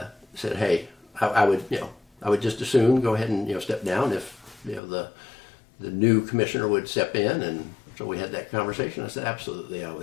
said, hey, I would just as soon go ahead and step down if the new commissioner would step in, and so we had that conversation. I said absolutely I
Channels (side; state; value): right; drops out; at 4.8 s